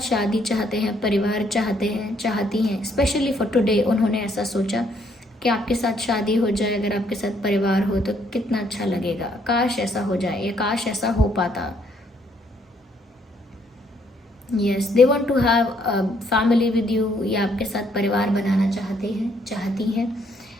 शादी चाहते हैं, परिवार चाहते हैं, चाहती हैं। स्पेशली फॉर टुडे उन्होंने ऐसा सोचा कि आपके साथ शादी हो जाए, अगर आपके साथ परिवार हो तो कितना अच्छा लगेगा, काश ऐसा हो जाए या काश ऐसा हो पाता। Yes, they want to have a family with you, या आपके साथ परिवार बनाना चाहते हैं, चाहती हैं,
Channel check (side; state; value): both; normal; correlation 0.69